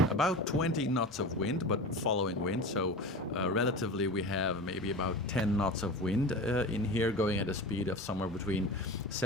about 20 knots of wind, but following wind, so relatively we have maybe about 10 knots of wind in here, going at a speed of somewhere between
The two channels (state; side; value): normal; both; correlation 0.31